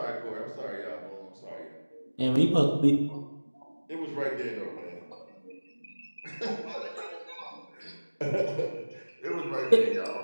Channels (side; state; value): both; inverted; correlation -1.00